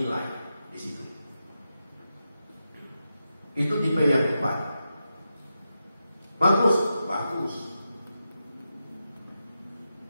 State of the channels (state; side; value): inverted; both; correlation -0.88